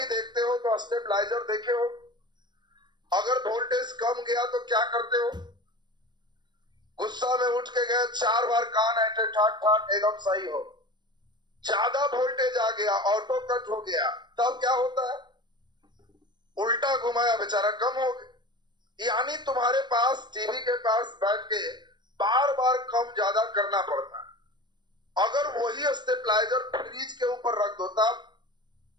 देखते हो तो स्टेबलाइजर देखे हो। अगर वोल्टेज कम गया तो क्या करते हो? गुस्सा में उठ के गए, 4 बार कान ऐठे ठाक ठाक एकदम सही हो। ज्यादा वोल्टेज आ गया, ऑटो कट हो गया, तब क्या होता है? उल्टा घुमाया बेचारा कम हो गया। यानी तुम्हारे पास टीवी के पास बैठ के बार बार कम ज्यादा करना पड़ता है। अगर वही स्टेबलाइजर फ्रिज के ऊपर रख दो तब,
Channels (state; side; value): late; left; 0.21 ms